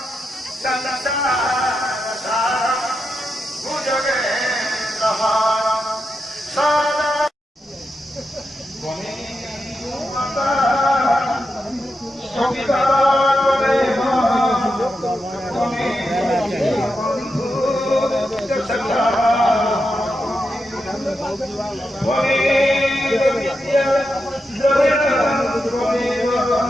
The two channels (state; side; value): normal; both; correlation 0.87